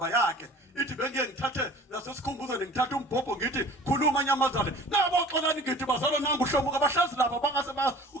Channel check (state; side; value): normal; both; correlation 0.45